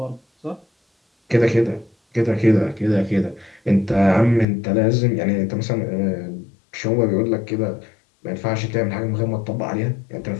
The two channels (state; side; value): drops out; right; at 4.5 s